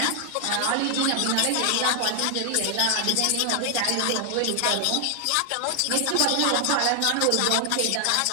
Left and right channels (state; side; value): different; both; correlation 0.00